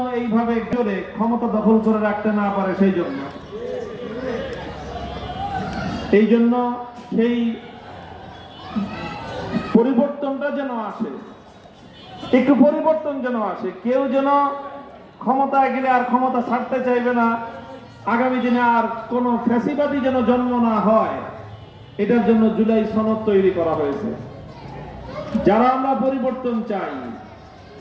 এইভাবে জোরে ক্ষমতা দখল করে রাখতে না পারে এই জন্য সেই পরিবর্তনটা যেন আসে, একটু পরিবর্তন যেন আসে। কেউ যেন ক্ষমতায় গেলে আর ক্ষমতা ছাড়তে চাইবে না, আগামী দিনে আর কোন ফ্যাসিবাদী যেন জন্ম না হয়, এটার জন্য জুলাই সনদ তৈরি করা হয়েছে। যারা আমরা পরিবর্তন চাই,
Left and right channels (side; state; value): both; identical; correlation 1.00